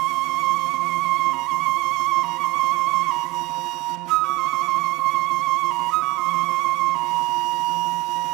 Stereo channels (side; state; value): left; quieter; 20.9 dB